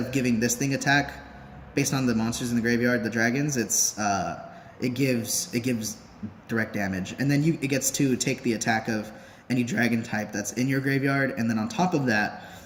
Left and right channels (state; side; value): identical; both; correlation 1.00